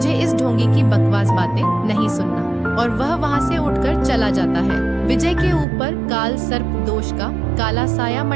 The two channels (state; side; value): drops out; left; at 5.7 s